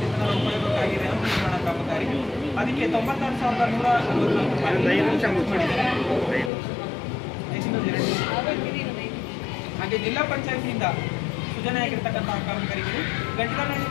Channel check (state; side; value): drops out; right; at 6.5 s